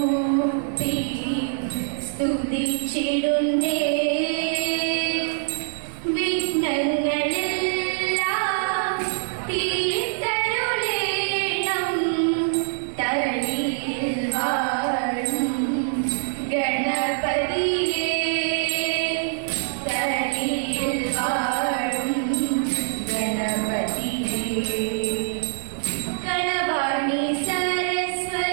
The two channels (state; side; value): silent; left; 62 dB below the other